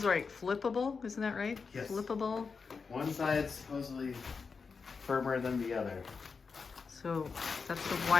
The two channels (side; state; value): right; quieter; 5.1 dB